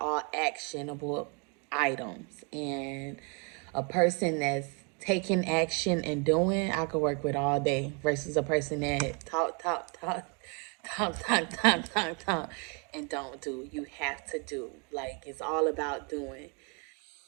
actionable items. And a person that's taking action and doing, I could work with all day versus a person that talk, and don't do. You have to do. Like, it's all about doing.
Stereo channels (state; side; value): quieter; left; 35.1 dB